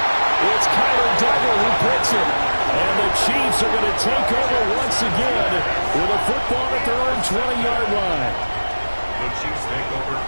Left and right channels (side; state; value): both; inverted; correlation -1.00